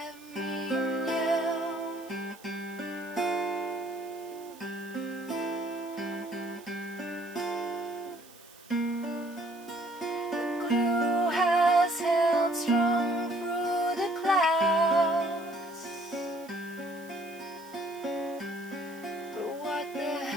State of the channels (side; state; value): right; noise; hiss, 22 dB below the sound